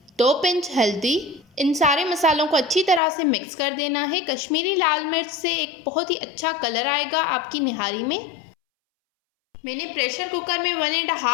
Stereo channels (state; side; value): drops out; right; at 3.0 s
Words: 2 पिंच हल्दी। इन सारे मसालों को अच्छी तरह से मिक्स कर देना है। कश्मीरी लाल मिर्च से एक बहुत ही अच्छा कलर आएगा आपकी निहारी में। मैंने प्रेशर कुकर में